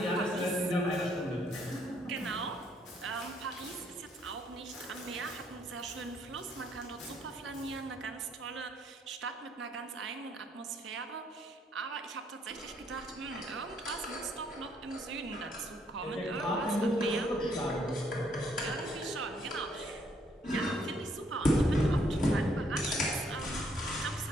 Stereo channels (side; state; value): both; normal; correlation 0.69